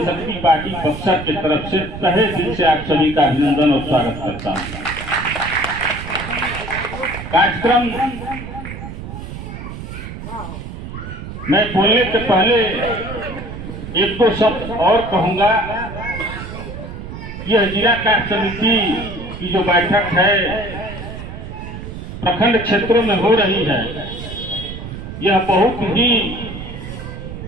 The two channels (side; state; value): right; noise; rumble, 9 dB below the sound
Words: पार्टी बक्सर की तरफ से तहे दिल से आप सभी का अभिनंदन और स्वागत करता हूं। कार्यक्रम मैं बोलने से पहले एक दो शब्द और कहूंगा। यह जिला कार्य समिति की जो बैठक है प्रखंड क्षेत्रों में हो रही है, यह बहुत ही